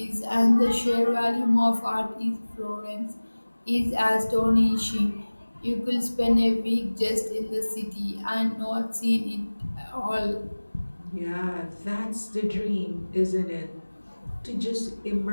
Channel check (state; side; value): inverted; both; correlation -1.00